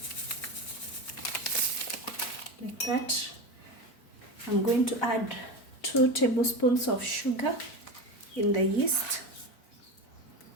Like that. I'm going to add 2 tablespoons of sugar in the yeast.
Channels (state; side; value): late; right; 4.5 ms